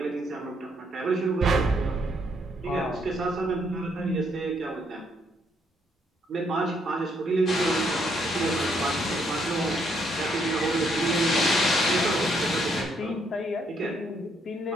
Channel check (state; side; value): normal; both; correlation 0.72